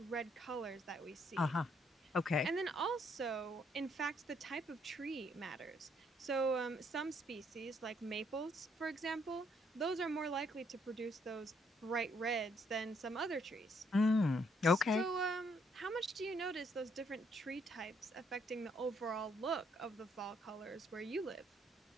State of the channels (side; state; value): both; normal; correlation 0.70